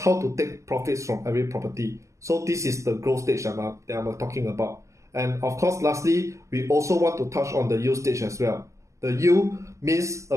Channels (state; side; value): late; left; 0.15 ms